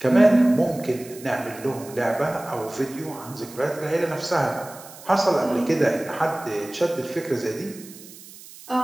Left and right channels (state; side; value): noise; right; hiss, 18 dB below the sound